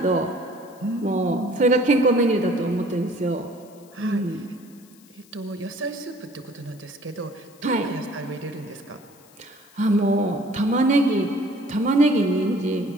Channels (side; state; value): left; noise; hiss, 27 dB below the sound